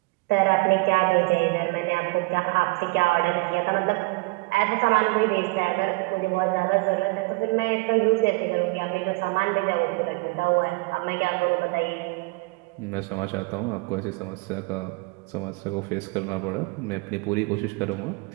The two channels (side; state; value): left; quieter; 25.8 dB